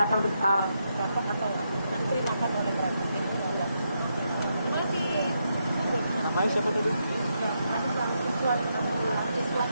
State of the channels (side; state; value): both; inverted; correlation -0.81